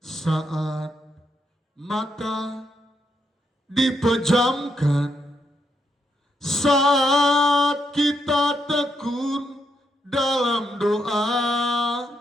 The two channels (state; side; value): normal; both; correlation 0.79